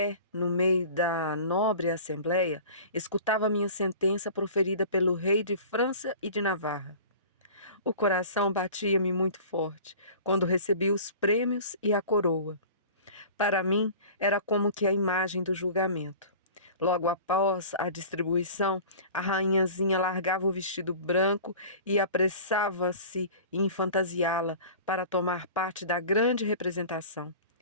no meio da nobre assembleia, escutava minha sentença proferida pelo rei de França e de Navarra. O coração batia-me muito forte quando recebi os prêmios e a coroa. Para mim, era como que a imagem do julgamento. Logo após a distribuição, a rainhazinha largava o vestido branco e apressava-se em fantasiá-la para tomar parte da grande representação.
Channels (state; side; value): inverted; both; correlation -0.41